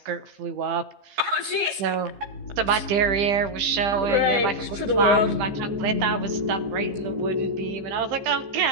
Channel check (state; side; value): late; left; 14 ms